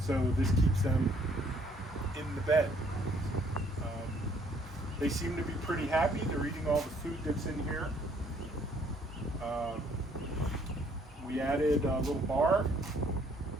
So this keeps them in the bed. They seem to be pretty happy. They're eating all the food that's in here. We added a little bar,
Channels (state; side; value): normal; both; correlation 0.64